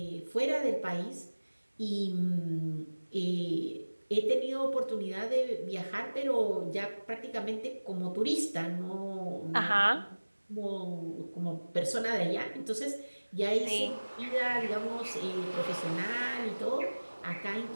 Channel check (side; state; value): both; inverted; correlation -1.00